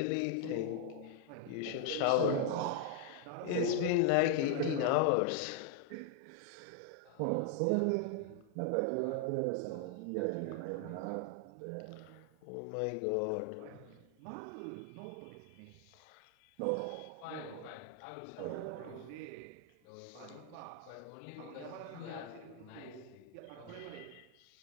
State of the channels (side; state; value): both; different; correlation 0.00